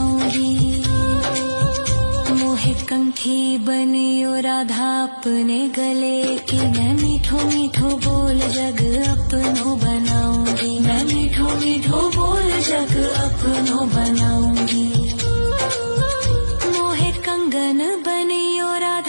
मोहे कंठी बनियो राधा अपने गले की, मैं मीठो मीठो बोल जग अपनो बनाऊंगी, मैं मीठो मीठो बोल जग अपनो बनाऊंगी। मोहे कंगन बनियो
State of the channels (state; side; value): inverted; both; correlation -1.00